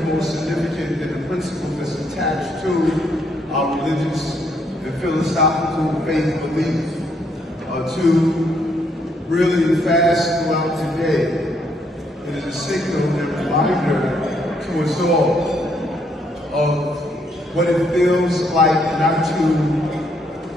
more significant than the principle that's attached to our religious and philosophical faith beliefs. To really fast throughout the day. It is a signal and reminder to us all of what it feels like not to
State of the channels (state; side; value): normal; both; correlation 0.72